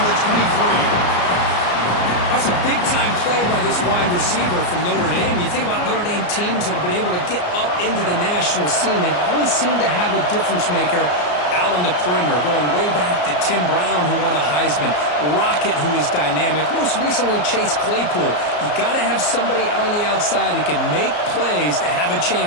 the 23. That's a big-time play by this wide receiver from Notre Dame. You think about Notre Dame teams that have been able to get up into the national scene. They've always seemed to have a difference maker out on the perimeter, going way back to Tim Brown, who won a Heisman, Rocket, who is dynamic, most recently Chase Claypool. You got to have somebody out on the outside that can make plays to have a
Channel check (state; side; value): late; right; 34 ms